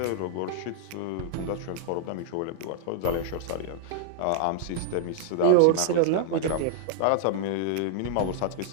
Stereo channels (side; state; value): both; different; correlation -0.01